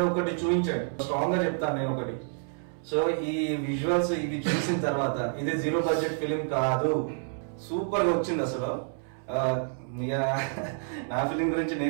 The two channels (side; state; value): left; silent; 59 dB below the other